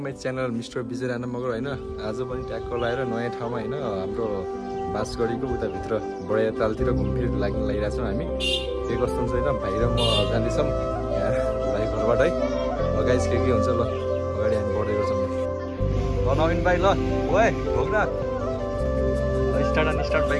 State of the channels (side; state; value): both; identical; correlation 1.00